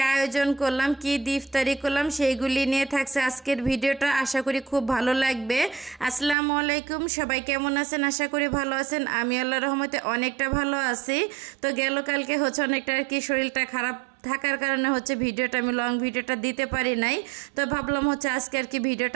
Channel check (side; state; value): left; drops out; at 6.4 s